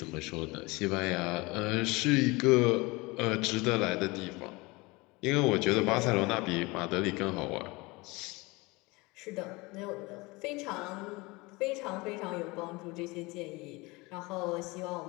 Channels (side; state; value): right; quieter; 24.0 dB